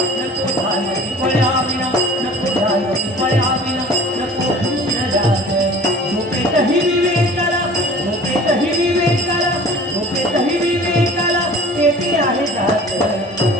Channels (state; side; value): normal; both; correlation 0.44